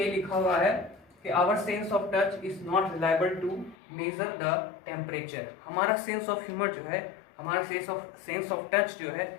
लिखा हुआ है कि our sense of touch is not reliable to measure the temperature. हमारा सेंस ऑफ ह्यूमर जो है, हमारा सेंस ऑफ टच जो है,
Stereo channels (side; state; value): right; drops out; at 3.8 s